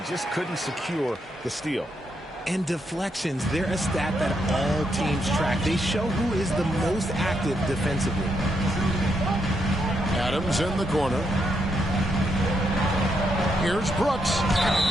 just couldn't secure the steal. And deflections, they're a stat that all teams track. They show who is the most active defensively. Adams in the corner. Here's Brooks.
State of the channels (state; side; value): normal; both; correlation 0.79